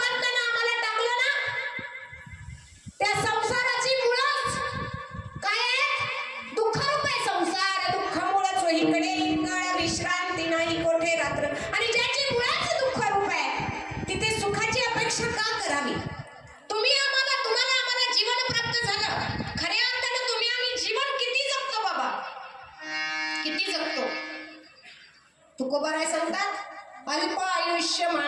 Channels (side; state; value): both; identical; correlation 1.00